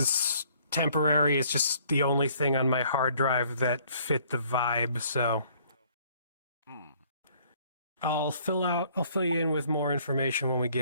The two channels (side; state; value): both; inverted; correlation -0.60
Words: temporary. It's just the only thing on my hard drive that fit the vibe, so... I'll fill you in with more information when we